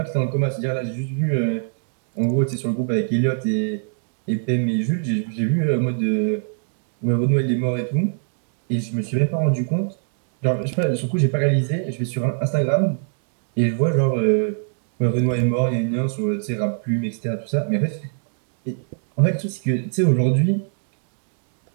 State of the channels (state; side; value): silent; left; digital silence